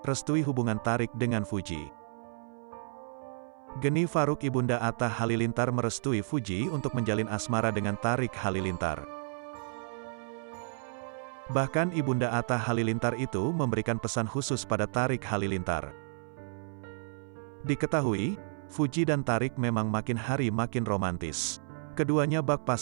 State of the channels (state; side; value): silent; left; 57 dB below the other